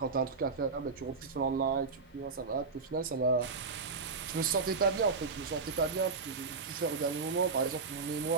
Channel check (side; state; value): left; quieter; 4.5 dB